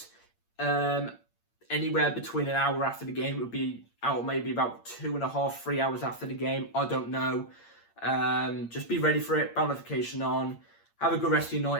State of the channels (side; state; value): right; late; 8.7 ms